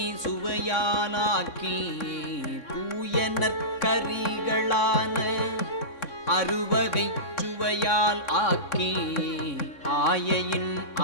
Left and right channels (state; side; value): late; right; 3.6 ms